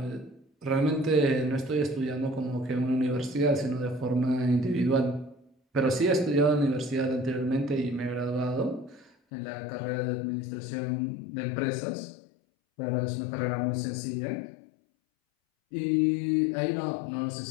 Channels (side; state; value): right; drops out; at 9.1 s